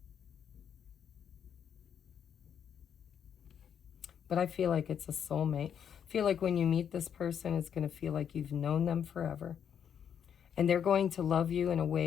But I feel like it's a soulmate. I feel like when you meet this person, it's going to feel like you've known them forever. And they're going to love you in a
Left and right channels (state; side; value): quieter; right; 8.4 dB